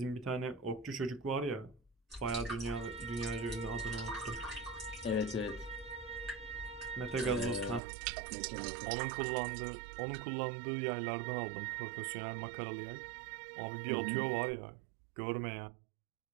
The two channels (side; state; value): left; drops out; at 7.8 s